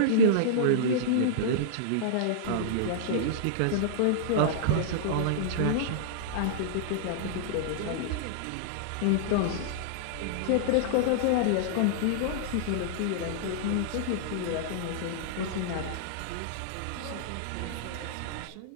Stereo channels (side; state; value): both; different; correlation -0.03